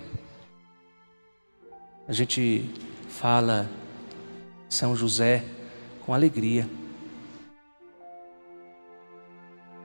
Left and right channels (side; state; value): both; inverted; correlation -1.00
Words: A gente fala São José com alegria.